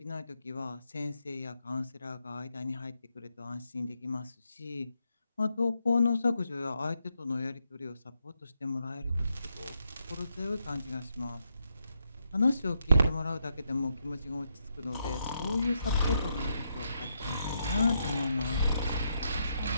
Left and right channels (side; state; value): both; inverted; correlation -0.80